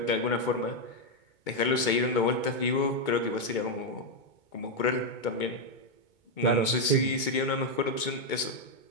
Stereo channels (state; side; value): late; right; 2.2 ms